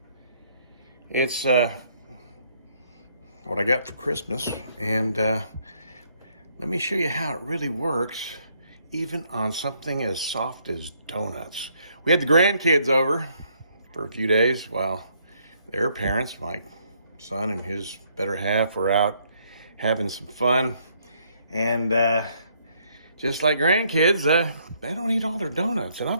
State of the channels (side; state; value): both; inverted; correlation -0.69